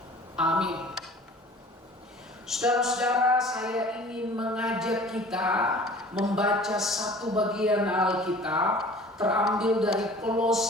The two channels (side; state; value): both; normal; correlation 0.46